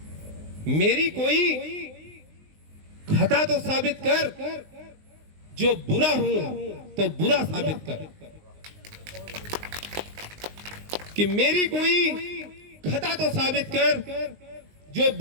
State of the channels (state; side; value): late; left; 19 ms